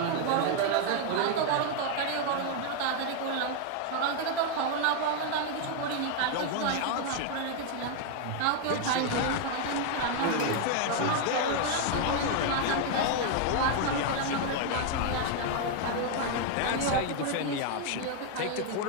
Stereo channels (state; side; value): different; both; correlation 0.01